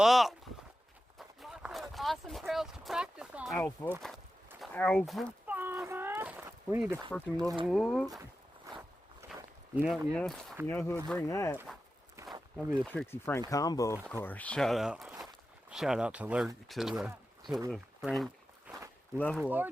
Lots of awesome trails to practice on. Alpha. Farmer. We need to freaking level up. You know who would bring that? That'd be the Trixie Frank combo, of course. Shout out to the Frank level Or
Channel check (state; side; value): normal; both; correlation 0.92